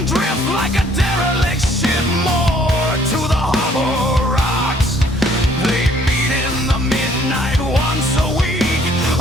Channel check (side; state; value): both; normal; correlation 0.61